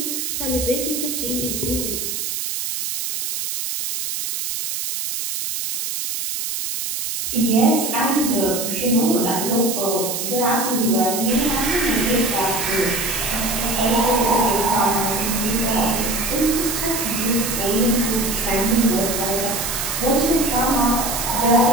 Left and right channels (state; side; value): noise; right; hiss, 3 dB below the sound